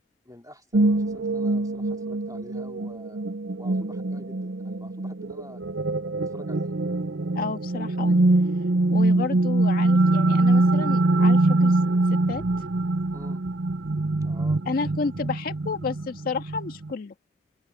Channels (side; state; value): both; normal; correlation 0.67